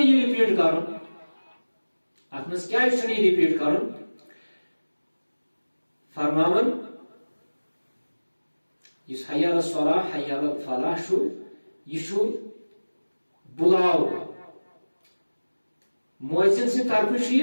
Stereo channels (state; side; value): inverted; both; correlation -1.00